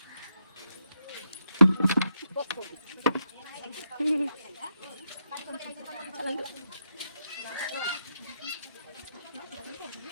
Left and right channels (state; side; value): inverted; both; correlation -0.82